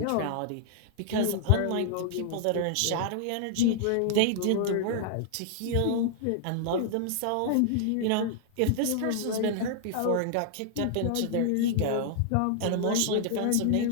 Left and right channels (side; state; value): both; different; correlation -0.01